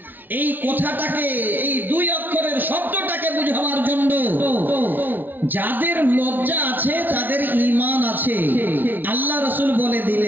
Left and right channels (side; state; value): left; late; 0.089 ms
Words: এই কথাটাকে, এই 2 অক্ষরের শব্দটাকে বুঝাবার জন্য, যাদের লজ্জা আছে তাদের ঈমান আছে, আল্লাহ রাসূল বলে